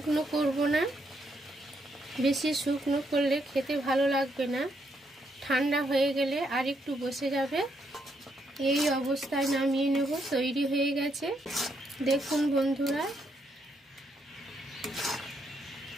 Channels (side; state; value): both; normal; correlation 0.76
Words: করব না, বেশি শুকনো করলে খেতে ভালো লাগবে না। ঠান্ডা হয়ে গেলে আর একটু বসে যাবে। এই অবস্থায় নামিয়ে নেব। তৈরি হয়ে গেছে, দেখুন বন্ধুরা।